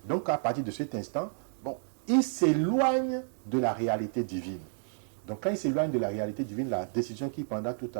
Donc à partir de cet instant, il s'éloigne de la réalité divine. Donc quand il s'éloigne de la réalité divine, la décision qu'il prendra tout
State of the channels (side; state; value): left; silent; digital silence